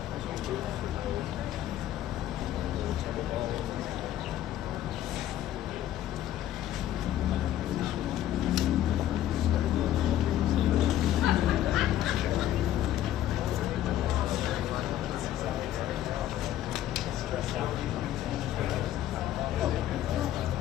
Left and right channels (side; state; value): right; quieter; 12.2 dB